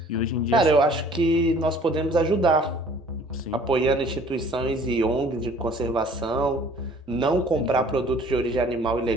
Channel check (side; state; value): both; normal; correlation 0.53